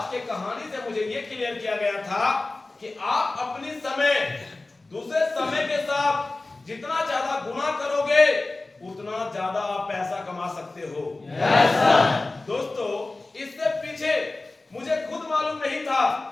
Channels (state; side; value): quieter; right; 3.2 dB